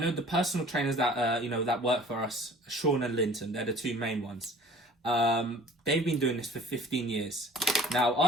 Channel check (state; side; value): normal; both; correlation 0.48